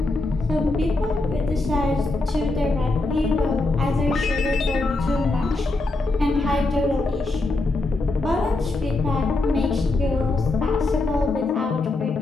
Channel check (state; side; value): quieter; right; 3.0 dB